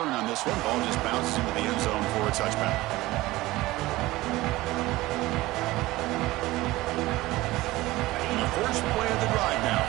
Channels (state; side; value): quieter; left; 18.6 dB